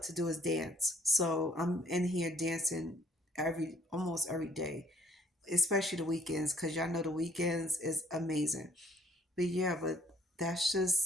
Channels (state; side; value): normal; both; correlation 0.62